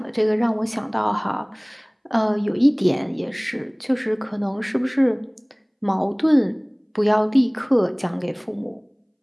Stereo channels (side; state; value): both; identical; correlation 1.00